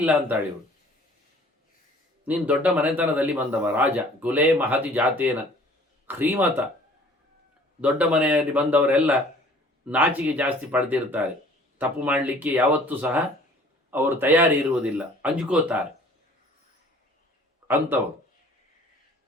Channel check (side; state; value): both; normal; correlation 0.52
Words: ಇಲ್ಲ ಅಂತಾಳೆ ಇವಳು. ನೀನು ದೊಡ್ಡ ಮನೆತನದಲ್ಲಿ ಬಂದವ, ರಾಜ, ಕುಲೇ ಮಹತಿ ಜಾತೇನ ಶ್ರೀಮತ. ದೊಡ್ಡ ಮನೆಯಲ್ಲಿ ಬಂದವರೆಲ್ಲ ನಾಚಿಕೆ ಜಾಸ್ತಿ ಪಡೆದಿರ್ತಾರೆ. ತಪ್ಪು ಮಾಡಲಿಕ್ಕೆ ಯಾವತ್ತೂ ಸಹ ಅವರು ತಯಾರಿ ಇರುವುದಿಲ್ಲ, ಅಂಜ್ಕೋತಾರೆ ಅಂಥವರು.